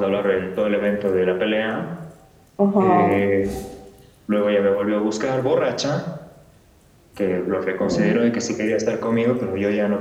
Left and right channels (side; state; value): both; identical; correlation 1.00